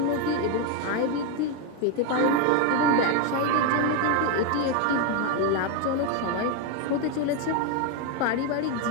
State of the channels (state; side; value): different; both; correlation 0.02